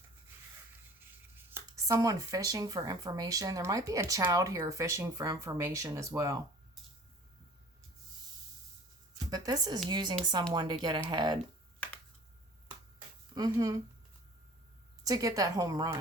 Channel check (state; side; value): normal; both; correlation 0.47